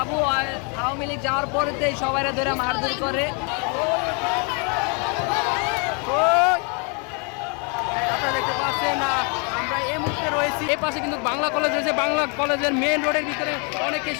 আওয়ামী লীগ যাওয়ার পরে সবাই ধরে মারধর করে। আপনারা দেখতে পাচ্ছেন আমরা এই মুহূর্তে রয়েছি, এই পাশে কিন্তু বাংলা কলেজ রয়েছে। বাংলা কলেজের মেইন রোডের ভিতরে অনেকে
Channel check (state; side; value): quieter; right; 35.7 dB